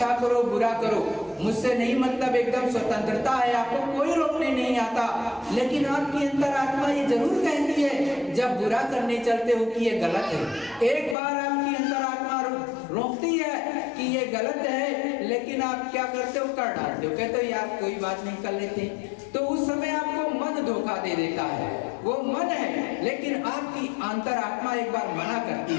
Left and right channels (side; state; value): right; drops out; at 11.2 s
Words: करो बुरा करो, मुझसे नहीं मतलब, एकदम स्वतंत्रता है, आपको कोई रोकने नहीं आता। लेकिन आपकी अंतरात्मा ये जरूर कहती है जब बुरा करने चलते हो कि ये गलत है। एक बार आपकी अंतरात्मा रोकती है कि ये गलत है, लेकिन आप क्या करते हो, कर डालते हो, कहते हो यार कोई बात नहीं कर लेते। तो उस समय आपको मन धोखा दे देता है, वो मन है, लेकिन आपकी अंतरात्मा एक बार मना करती